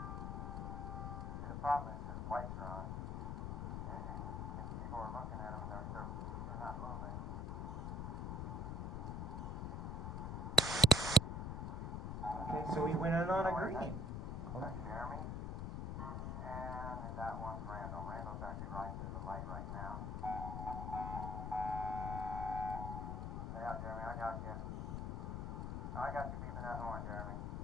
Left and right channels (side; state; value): left; noise; rumble, 2 dB below the sound